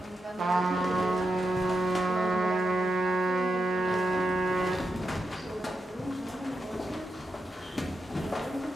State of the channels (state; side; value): normal; both; correlation 0.87